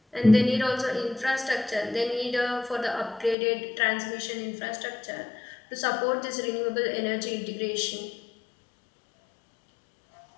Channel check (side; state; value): right; drops out; at 3.4 s